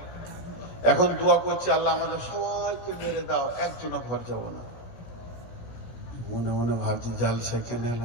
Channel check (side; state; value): right; late; 17 ms